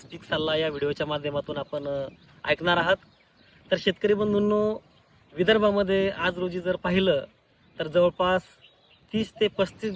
पीक सल्ला या व्हिडिओच्या माध्यमातून आपण ऐकणार आहात. तर शेतकरी बंधूंनो, विदर्भामध्ये आज रोजी जर पाहिलं तर जवळपास 30 ते 35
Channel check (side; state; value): both; identical; correlation 1.00